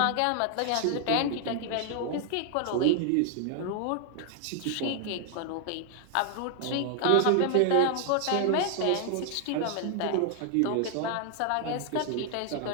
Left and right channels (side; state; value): both; different; correlation 0.00